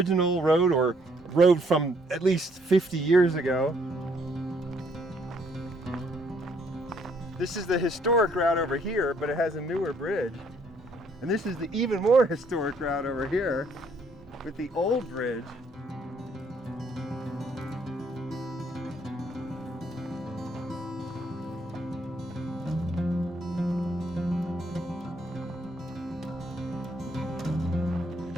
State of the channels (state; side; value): normal; both; correlation 0.67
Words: road, or road from at least 50 years ago. This is the historic route over here, but it has a newer bridge. And this is the even more historic route over here with the old bridge.